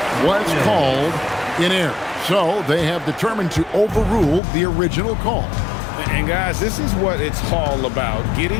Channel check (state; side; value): drops out; right; at 4.4 s